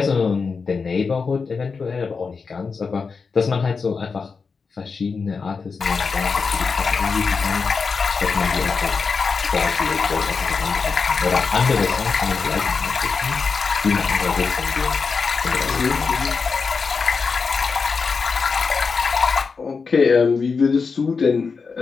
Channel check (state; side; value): quieter; right; 5.0 dB